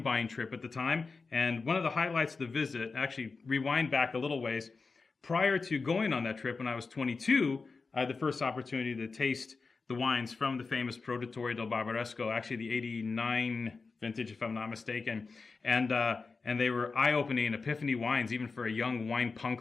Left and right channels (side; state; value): right; quieter; 4.4 dB